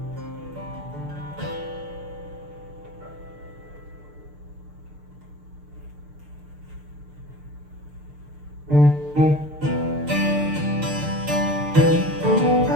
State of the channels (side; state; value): left; late; 6.7 ms